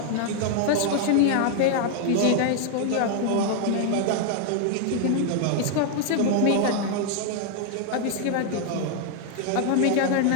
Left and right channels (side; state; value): both; different; correlation 0.00